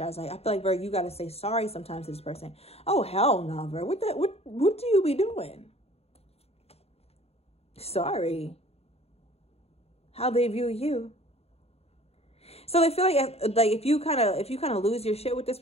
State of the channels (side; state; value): right; late; 0.30 ms